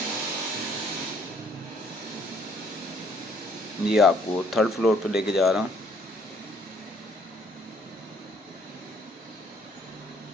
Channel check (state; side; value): normal; both; correlation 0.63